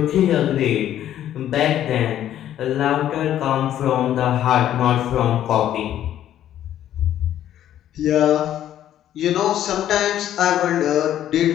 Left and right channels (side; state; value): right; quieter; 11.5 dB